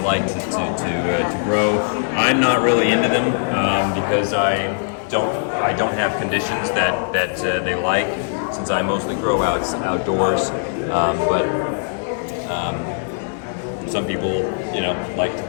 to grow. I'm not really into them because I don't have conditions that they like, since I mostly grow outdoors. But some people, like to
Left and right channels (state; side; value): silent; right; digital silence